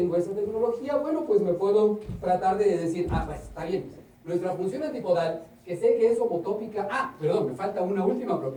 esa tecnología? Bueno, pues me puedo tratar de decir, pues está bien, nuestra función antipodal, que sé que es homotópica, perdón, me falta una última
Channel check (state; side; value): identical; both; correlation 1.00